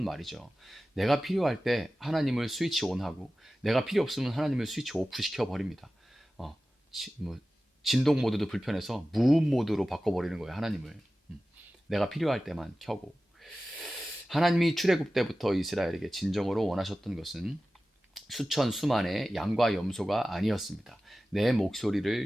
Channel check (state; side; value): normal; both; correlation 0.95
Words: 말이죠. 내가 필요할 때 하나님을 스위치 온하고 내가 필요 없으면 하나님을 스위치 오프 시켜버립니다. 뭐 진동 모드도 불편해서 무음 모드로 바꿔버리는 거예요. 하나님을. 내가 필요할 때만 켜고. 하나님이 출애굽 때부터 이스라엘에게 진정으로 원하셨던 것은 수천 수만의 양과 염소가 아니었습니다. 내